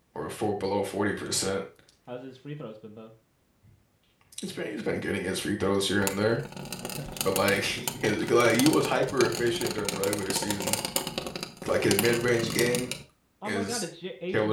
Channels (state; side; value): identical; both; correlation 1.00